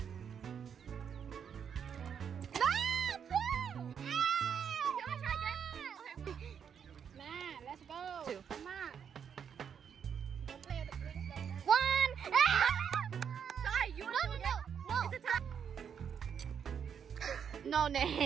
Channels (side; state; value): left; quieter; 7.6 dB